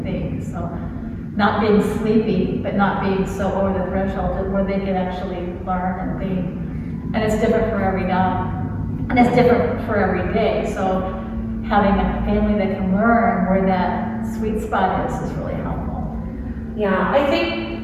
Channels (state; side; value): identical; both; correlation 1.00